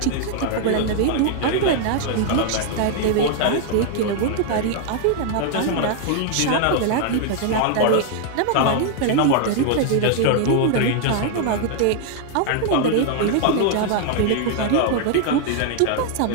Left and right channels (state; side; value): different; both; correlation 0.00